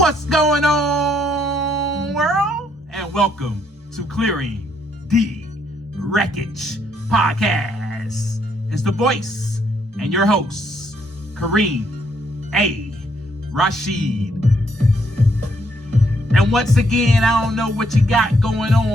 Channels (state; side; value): normal; both; correlation 0.71